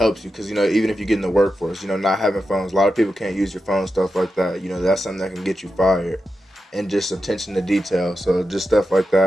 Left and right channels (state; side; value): normal; both; correlation 0.89